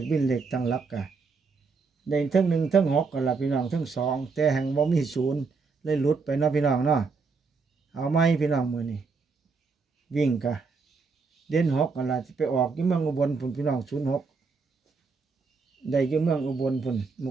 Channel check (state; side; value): quieter; left; 4.6 dB